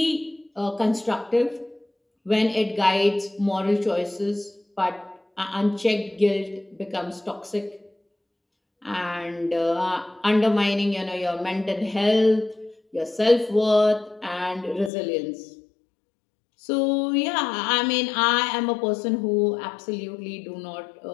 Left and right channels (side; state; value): right; drops out; at 14.9 s